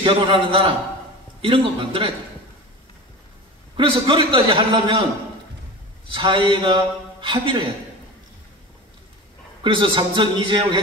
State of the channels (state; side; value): normal; both; correlation 0.32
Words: 결혼하는 나라, 이런 거 만들어야 돼요. 그래서 그렇게까지 하려면 사회가 합의를 해야 돼요. 그래서 삼성 이재용